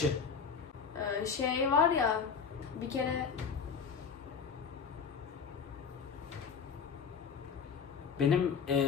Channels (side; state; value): right; quieter; 6.2 dB